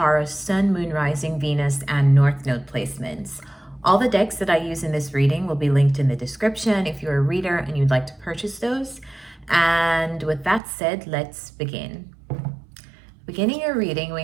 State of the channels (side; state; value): left; drops out; at 10.6 s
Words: Sun, Moon, Rising, Venus, and North Node placements. All the decks that I use in this reading will be linked in the description if you're a reader and you'd like to purchase those. And with that said, let's begin. Beginning your reading, we